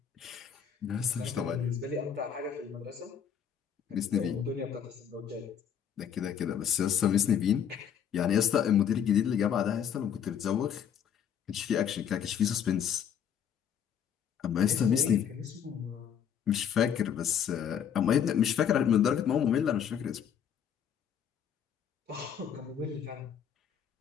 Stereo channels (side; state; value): right; quieter; 8.4 dB